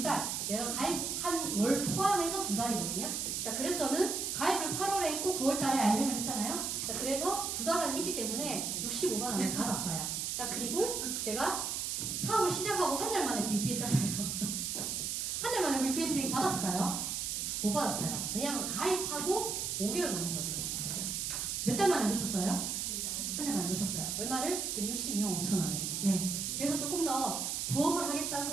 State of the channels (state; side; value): noise; right; hiss, 1 dB below the sound